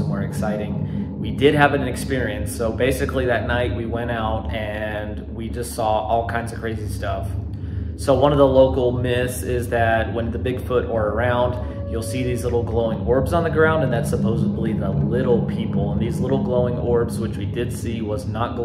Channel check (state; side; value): identical; both; correlation 1.00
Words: exciting. We did have an experience. So basically that night we went out and we just saw all kinds of crazy stuff. So one of the local myths is that when the Bigfoot are around, you'll see these little glowing orbs on the ground, and that's supposedly the little people. And these little glowing orbs, which we did see, was not